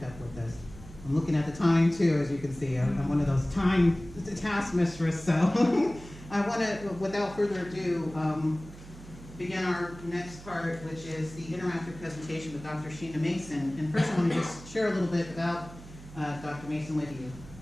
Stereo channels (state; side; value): noise; right; hum, 17 dB below the sound